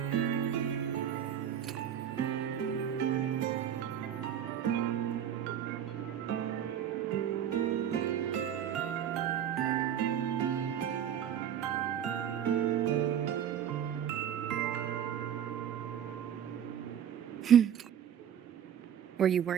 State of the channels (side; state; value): left; quieter; 9.4 dB